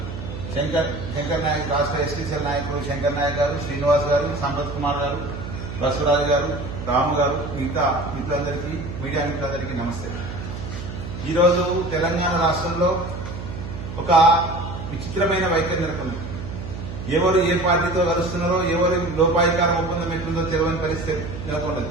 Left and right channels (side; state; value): right; noise; hum, 8 dB below the sound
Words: శంకర్ నాయక్ రాష్ట్ర ఎస్టీసీఎల్ నాయకులు శంకర్ నాయక్ గారు, శ్రీనివాస్ గారు, సంపత్ కుమార్ గారు, బసవరాజు గారు, రాము గారు, మిగతా మిత్రులందరికీ మీడియా మిత్రులందరికీ నమస్తే. ఈరోజు తెలంగాణ రాష్ట్రంలో ఒక విచిత్రమైన వైఖరి నెలకొంది. ఎవరు ఏ పార్టీతో కలుస్తున్నారో, ఎవరు లోపాయికార ఒప్పందం ఎట్లుందో తెలియని పరిస్థితి నెలకొన్నది.